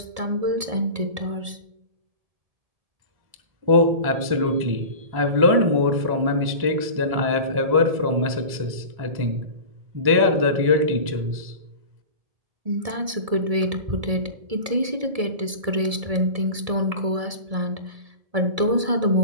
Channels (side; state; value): left; late; 1.7 ms